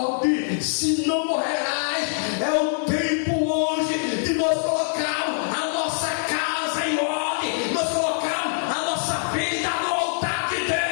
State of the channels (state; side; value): silent; right; digital silence